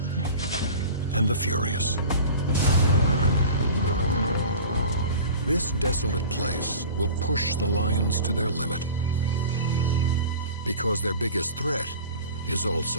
and the furious. This desolate place will push the lions to their limit, because their biggest threat is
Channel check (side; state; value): both; inverted; correlation -0.39